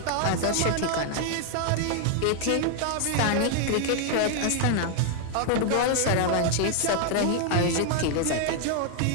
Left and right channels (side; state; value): both; different; correlation 0.00